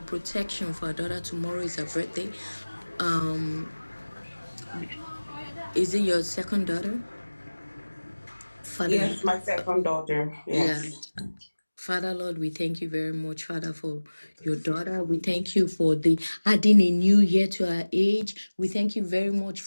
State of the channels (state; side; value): inverted; both; correlation -1.00